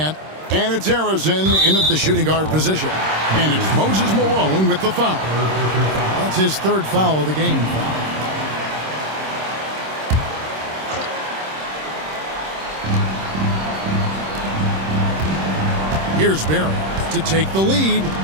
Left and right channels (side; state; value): left; late; 26 ms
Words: And it's Harrison in at the shooting guard position. And it's Moses Malone with the foul. That's his 3rd foul of the game. Here's Barry to take the lead.